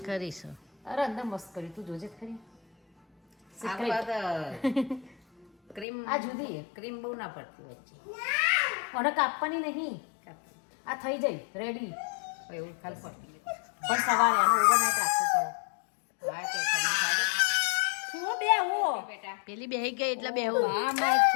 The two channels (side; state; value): right; drops out; at 5.9 s